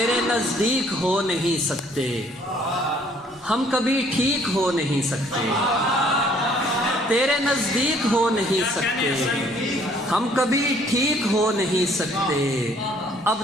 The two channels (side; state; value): both; normal; correlation 0.60